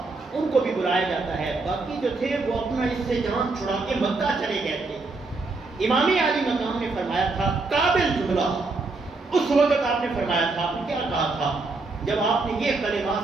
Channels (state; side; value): quieter; left; 3.6 dB